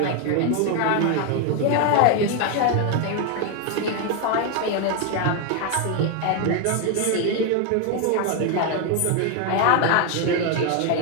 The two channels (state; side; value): different; both; correlation 0.01